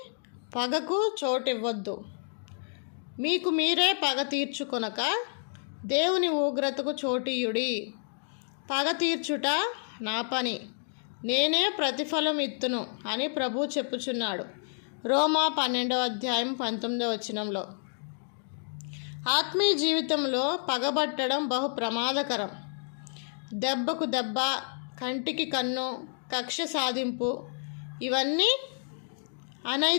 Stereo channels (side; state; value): right; silent; digital silence